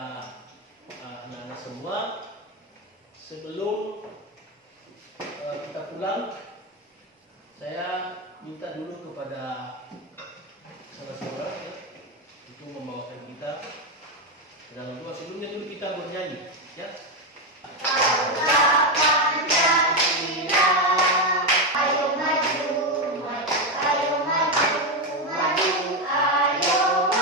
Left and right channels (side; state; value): both; normal; correlation 0.08